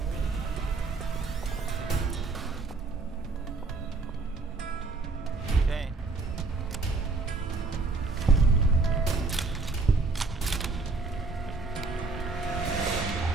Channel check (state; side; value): quieter; left; 3.7 dB